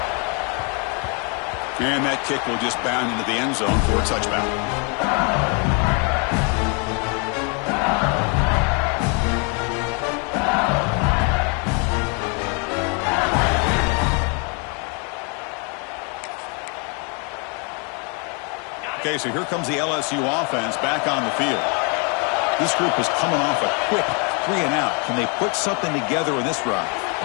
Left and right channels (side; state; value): right; quieter; 35.8 dB